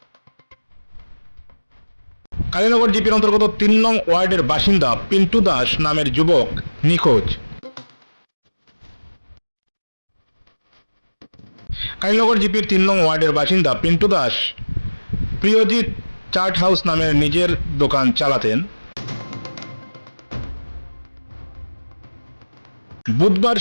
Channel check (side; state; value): both; inverted; correlation -1.00